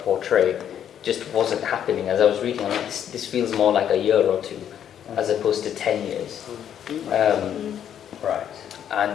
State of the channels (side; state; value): right; quieter; 9.5 dB